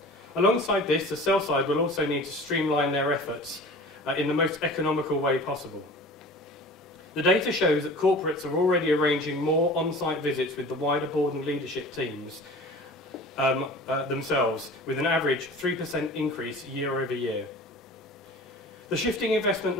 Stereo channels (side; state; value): both; normal; correlation 0.41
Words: Alongside this, the sell side will also need to streamline their efforts in the most economical way possible. The data shows that corporates are already arranging more on-site visits with the wider board and leadership teams themselves, with an average 3% increase year over year. The shifting investment